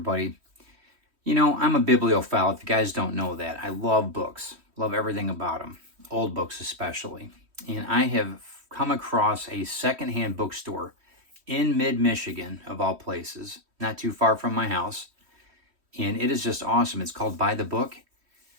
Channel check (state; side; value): late; left; 3.1 ms